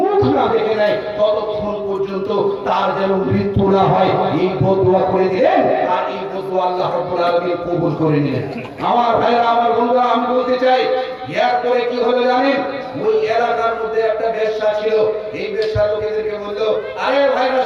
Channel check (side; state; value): both; identical; correlation 1.00